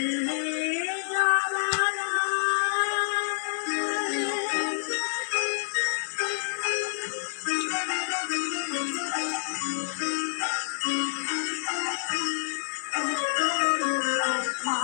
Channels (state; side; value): silent; right; digital silence